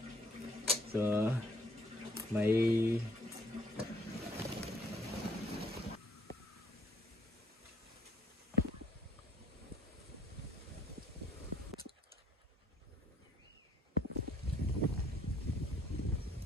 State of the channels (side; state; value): both; normal; correlation 0.63